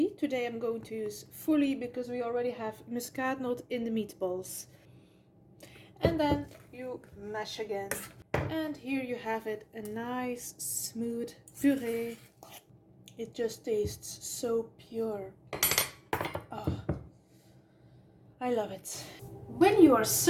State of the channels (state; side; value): identical; both; correlation 1.00